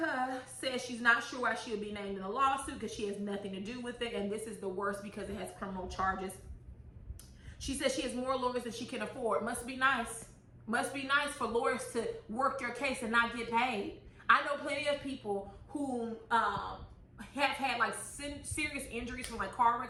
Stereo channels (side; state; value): both; identical; correlation 1.00